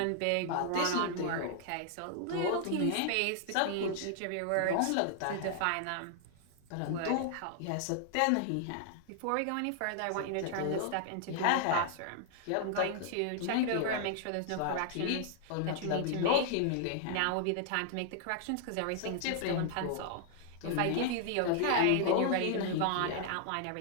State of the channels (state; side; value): different; both; correlation -0.01